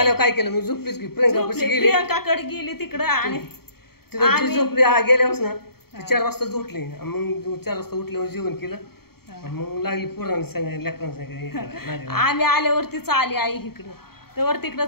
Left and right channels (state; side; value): late; right; 0.95 ms